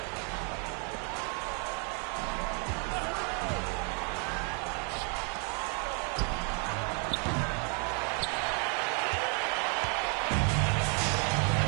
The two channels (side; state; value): left; quieter; 38.1 dB